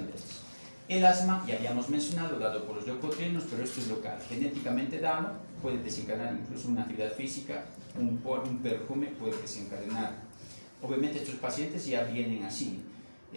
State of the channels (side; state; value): both; inverted; correlation -1.00